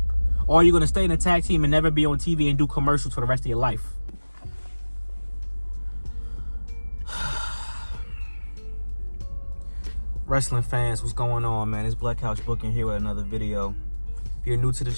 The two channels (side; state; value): both; inverted; correlation -1.00